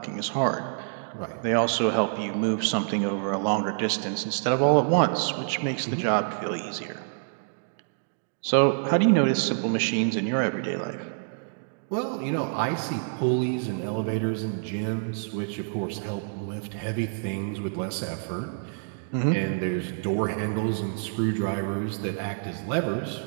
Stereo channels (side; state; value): left; silent; digital silence